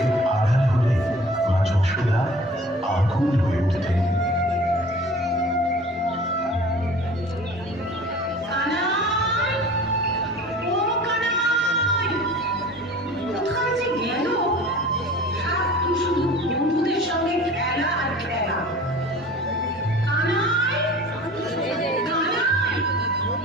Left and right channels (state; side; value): normal; both; correlation 0.43